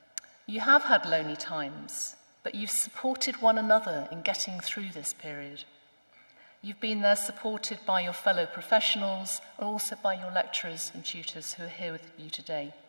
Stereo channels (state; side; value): inverted; both; correlation -1.00